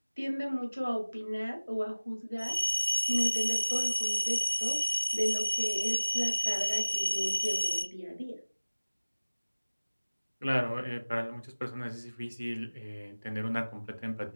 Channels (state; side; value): inverted; both; correlation -1.00